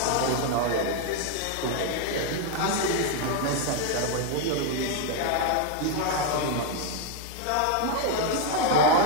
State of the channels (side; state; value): both; different; correlation 0.01